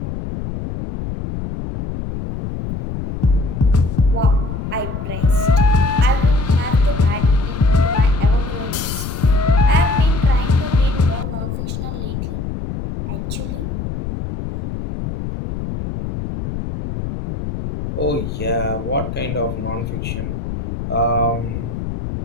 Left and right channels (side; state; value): left; noise; rumble, 6 dB below the sound